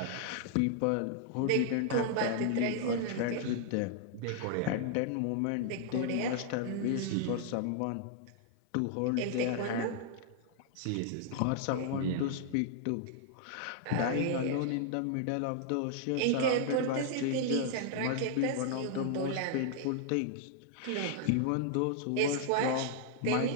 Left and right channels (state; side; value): different; both; correlation 0.00